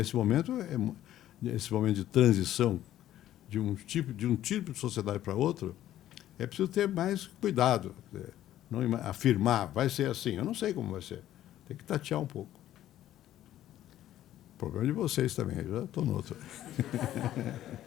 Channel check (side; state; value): right; quieter; 12.8 dB